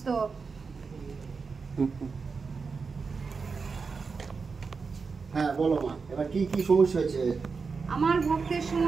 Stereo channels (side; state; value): left; quieter; 4.9 dB